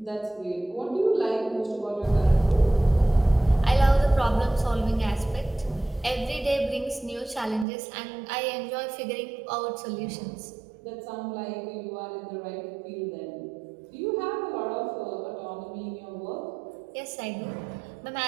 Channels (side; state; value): left; drops out; at 7.7 s